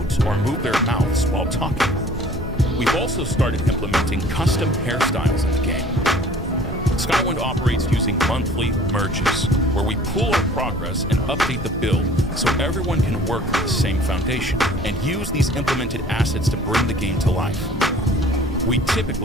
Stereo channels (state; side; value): normal; both; correlation 0.50